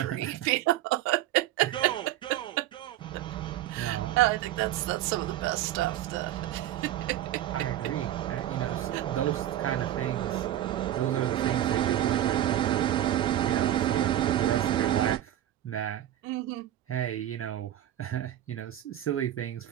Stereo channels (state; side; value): quieter; left; 12.6 dB